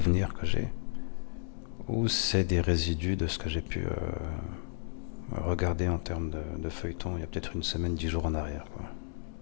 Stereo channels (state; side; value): silent; right; digital silence